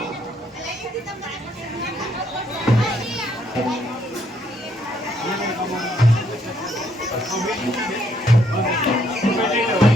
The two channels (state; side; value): normal; both; correlation 0.70